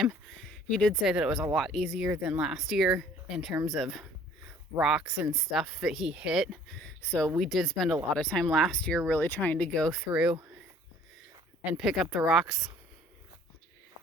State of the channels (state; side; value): normal; both; correlation 0.54